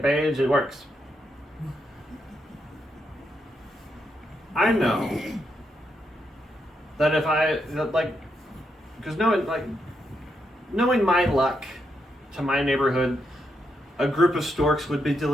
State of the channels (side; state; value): both; normal; correlation 0.81